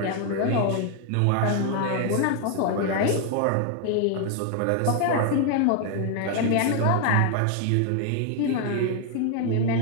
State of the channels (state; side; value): different; both; correlation 0.00